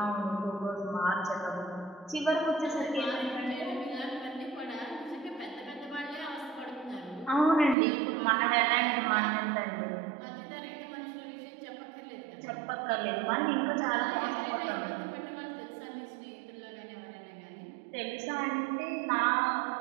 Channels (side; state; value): left; drops out; at 7.8 s